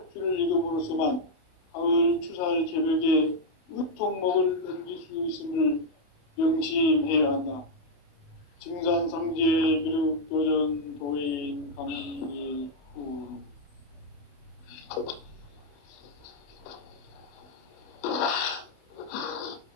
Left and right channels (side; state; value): right; late; 28 ms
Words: 읽음으로써만 가을 추살 개벽에 으통목을 넘길 수 있음을 명심해야 한다. 증산상제 미륵도전 도인 강리후